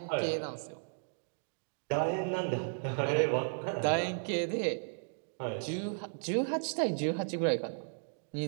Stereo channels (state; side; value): silent; left; digital silence